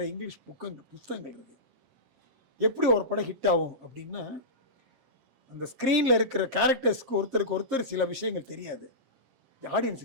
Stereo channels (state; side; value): late; left; 7.5 ms